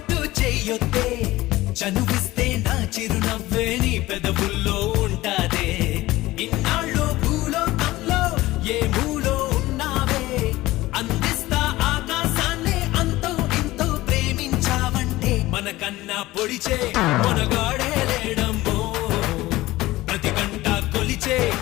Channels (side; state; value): right; quieter; 17.9 dB